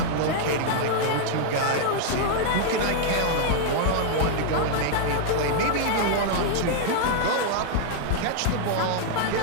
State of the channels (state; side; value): different; both; correlation 0.00